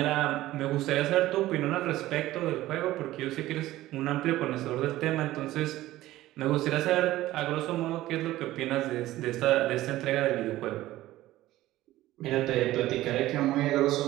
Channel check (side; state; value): left; quieter; 15.9 dB